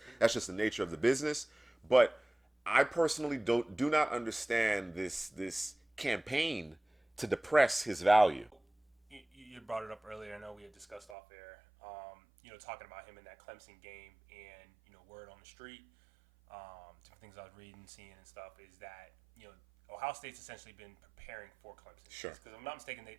That's just the nature of the business. But I personally do not understand this campaign to depress his value. You brought it up earlier. I know we had discussed off air. Talking about him in that Clemson game, and word on the street, different things I was reading, seeing, and stuff is that Ohio State's essentially been preparing for Clemson. Sure. Because if I'm not mistaken, they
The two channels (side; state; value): left; drops out; at 11.2 s